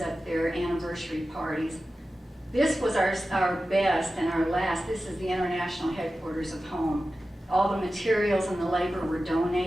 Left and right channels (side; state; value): both; normal; correlation 0.94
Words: there, anniversary parties. This was our best and our last. This is the international headquarters of Home. All the materials and the labor were